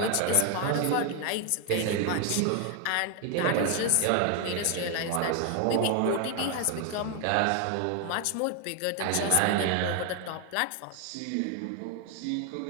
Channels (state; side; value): different; both; correlation 0.01